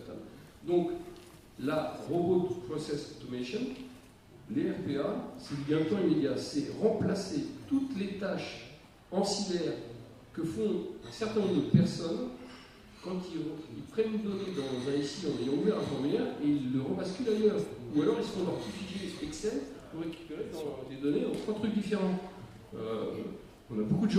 Donc, la Robot Process Automation, les RPA, c'est du gain de temps immédiat. C'est remplacer toutes les tâches ancillaires que font un certain nombre de personnes quand ils prennent une donnée dans un SI en ayant ouvert un formulaire et ils le rebasculent ailleurs. Ou alors, ils se font leur petit fichier Excel pour récupérer des données dans 3 trucs différents. On a beaucoup de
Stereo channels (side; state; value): both; identical; correlation 1.00